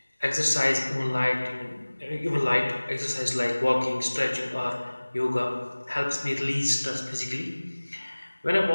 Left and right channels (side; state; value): both; inverted; correlation -1.00